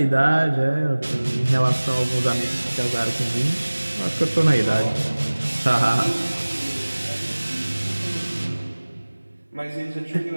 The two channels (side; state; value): both; inverted; correlation -1.00